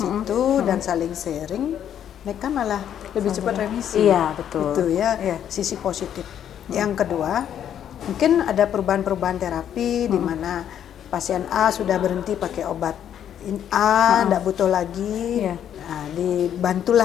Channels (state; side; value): quieter; right; 9.8 dB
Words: itu dan saling sharing, mereka malah lebih cepat remisi. Itu ya, sisi positif. Yang kedua, mungkin ada perubahan-perubahan terapi di mana pasien A sudah berhenti pakai obat A, tidak butuh lagi, nah,